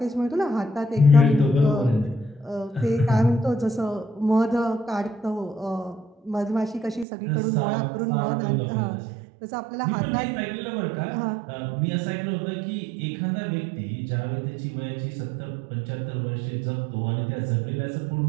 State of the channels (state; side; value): drops out; left; at 7.1 s